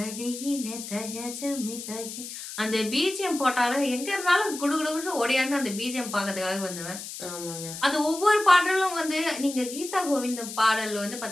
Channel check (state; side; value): noise; left; hiss, 10 dB below the sound